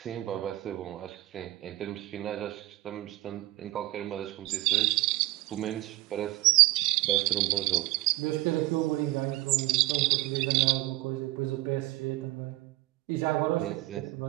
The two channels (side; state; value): left; quieter; 18.5 dB